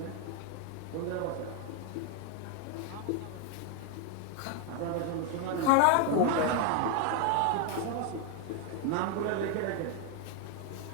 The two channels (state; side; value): different; both; correlation 0.01